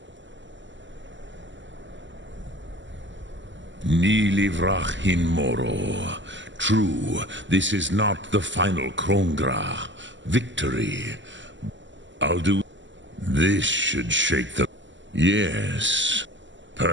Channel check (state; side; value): late; left; 0.54 ms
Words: Ni livrach hin moro. True, this is not the final Kongrach victory. Alduin, this should shake the... Yes,